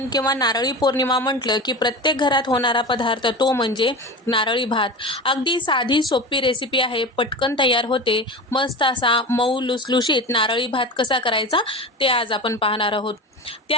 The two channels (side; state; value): both; normal; correlation 0.28